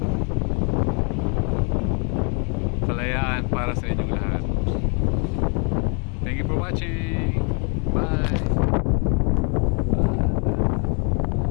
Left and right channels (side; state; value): right; quieter; 37.4 dB